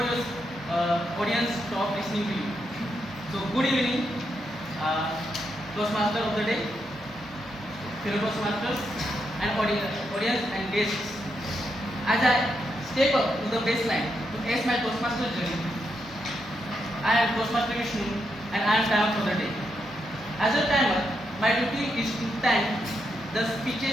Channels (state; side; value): normal; both; correlation 0.82